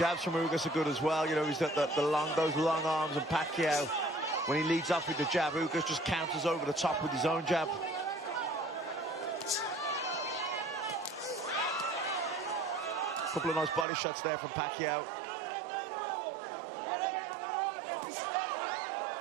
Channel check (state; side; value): drops out; left; at 13.9 s